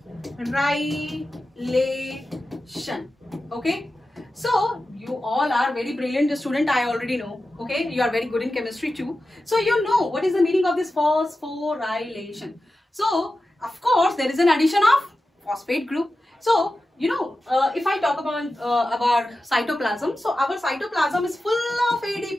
okay, so you all are very brilliant student, I already know. Okay, you are very good in chemistry too, so you know what is the meaning of this phosphorylation. So of course there is an addition of phosphate group. So you know, if I talk about cytoplasm, so our cytoplasm is full of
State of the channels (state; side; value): normal; both; correlation 0.93